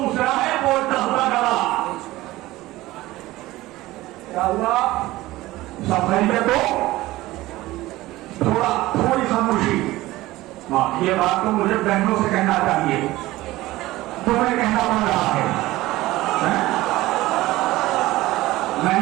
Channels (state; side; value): quieter; left; 17.8 dB